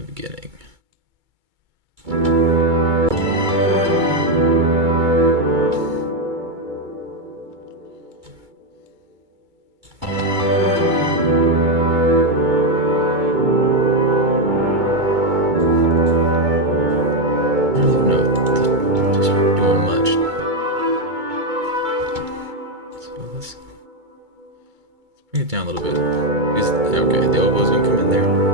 beginning. it down a little bit. Okay, the oboe's gonna come in there.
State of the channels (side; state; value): left; late; 2.2 ms